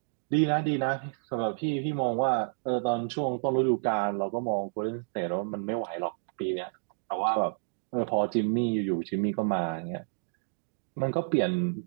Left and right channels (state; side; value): silent; left; digital silence